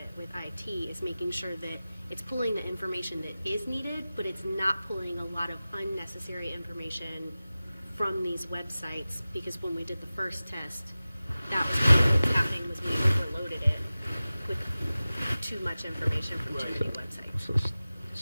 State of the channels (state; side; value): inverted; both; correlation -0.97